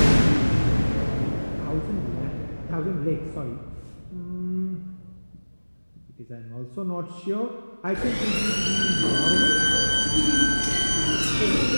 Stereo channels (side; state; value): both; inverted; correlation -1.00